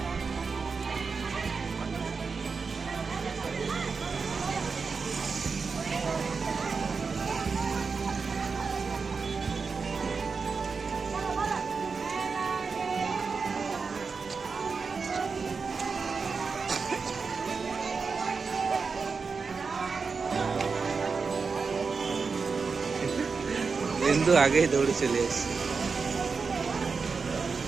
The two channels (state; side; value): quieter; left; 4.9 dB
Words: बिंदु आगे ही दौड़ चले।